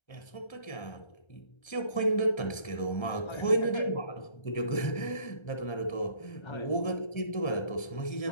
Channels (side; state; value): right; late; 1.3 ms